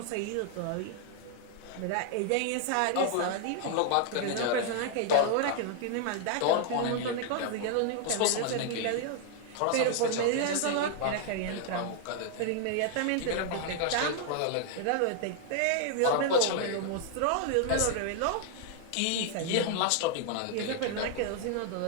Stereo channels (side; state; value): both; different; correlation 0.00